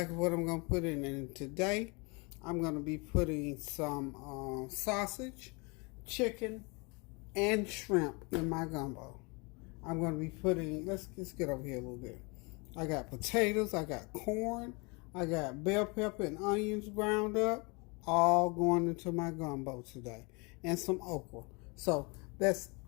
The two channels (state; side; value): quieter; right; 29.6 dB